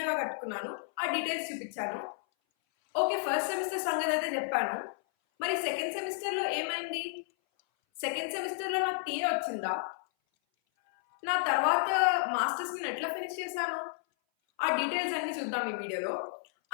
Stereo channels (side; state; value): right; silent; 56 dB below the other